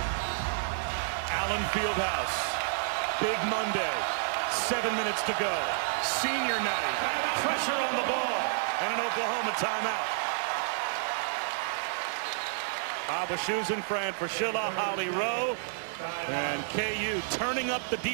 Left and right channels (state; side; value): silent; left; digital silence